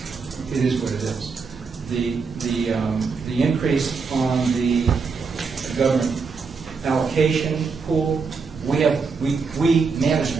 is what it is. The increase on the government allocation pool, we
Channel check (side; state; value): left; quieter; 5.0 dB